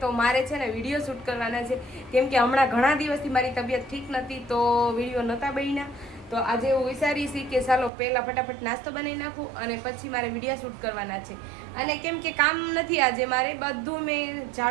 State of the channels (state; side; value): drops out; left; at 7.9 s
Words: તો મારે છે ને વિડીયો શૂટ કરવાના છે કેમ કે હમણાં ઘણા દિવસથી મારી તબિયત ઠીક નથી તો વિડીયો નહોતા બન્યા। તો આજે એવું વિચારી છે કે ચાલો પહેલાં ફટાફટ નાસ્તો બનાવી નાખું અને પછી મારે વિડીયો શૂટ કરવાના છે। અને કેમ કે કામ નથી આજે મારે, બધું મેં